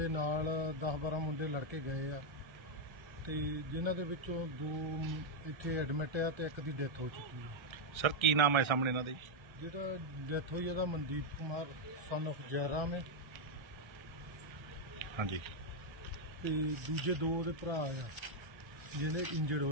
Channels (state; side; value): late; left; 1.3 ms